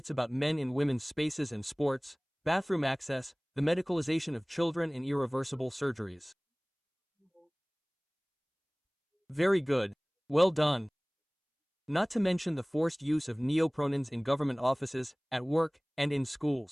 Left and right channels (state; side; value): identical; both; correlation 1.00